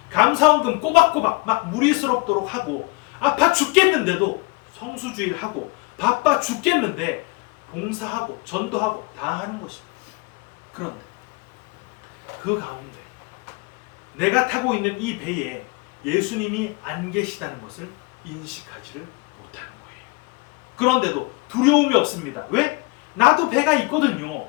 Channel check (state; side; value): quieter; right; 27.5 dB